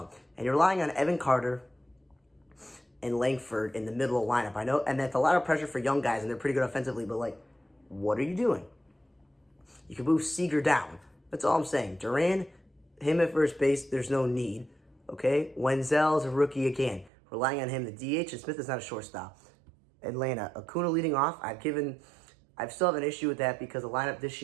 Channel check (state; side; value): drops out; left; at 17.1 s